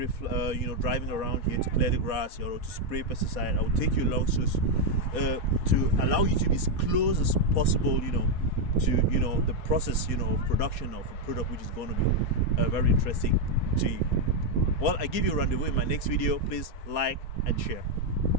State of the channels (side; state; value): right; late; 4.2 ms